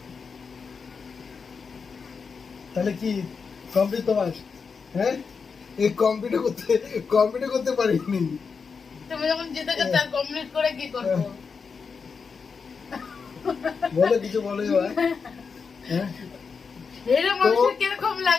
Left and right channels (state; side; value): quieter; right; 5.4 dB